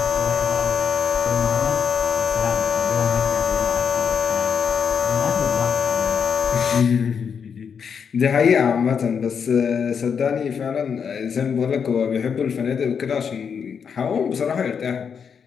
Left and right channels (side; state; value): right; quieter; 6.7 dB